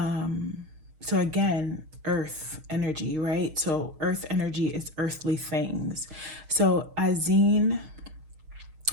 again, earth energy, right? So earth energy is earthly things. So Azine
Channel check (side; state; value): left; late; 6.5 ms